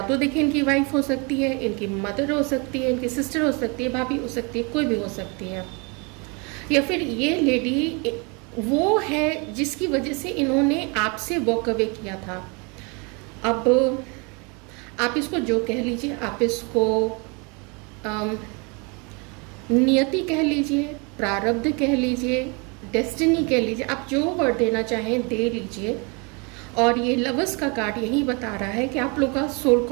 तो देखिए इनकी वाइफ हो सकती है, इनकी मदर हो सकती है, इनकी सिस्टर हो सकती है, भाभी हो सकती है, कोई भी हो सकती है, या फिर ये लेडी वो है जिसकी वजह से इन्होंने आपसे वॉक अवे किया था। अब आप इसको जो कह लीजिए, आप इसको नियति कह लीजिए, प्रारब्ध कह लीजिए, डेस्टिनी कह लीजिए, आप जो वर्ड देना चाहें दे लीजिए। और ये लवर्स का कार्ड यही बता रहा है कि आप लोग का सोल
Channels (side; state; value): left; quieter; 31.4 dB